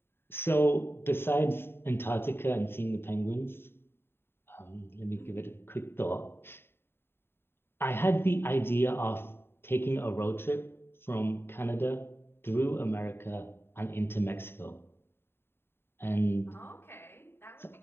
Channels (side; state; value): right; late; 0.11 ms